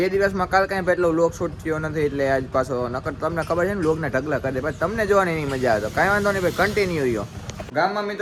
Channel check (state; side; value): identical; both; correlation 1.00